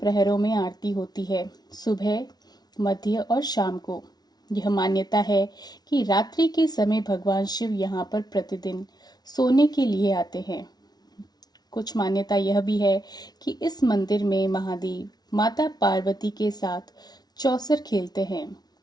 में आरती होती है, सुबह, मध्य और शाम को। यह मान्यता है कि रात्रि के समय भगवान शिव यहाँ पर प्रतिदिन सोने के लिए आते हैं। कुछ मान्यता यह भी है कि इस मंदिर में महादेव माता पार्वती के साथ चौसर खेलते हैं।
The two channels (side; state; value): right; late; 0.19 ms